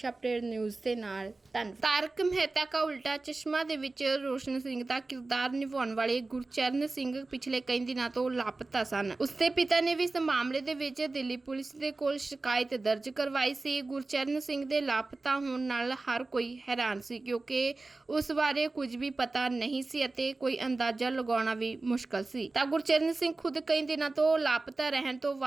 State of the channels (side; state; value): left; quieter; 3.4 dB